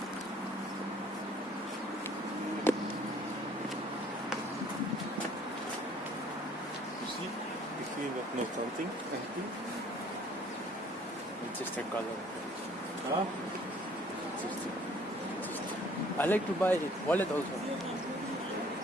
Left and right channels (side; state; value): both; normal; correlation 0.57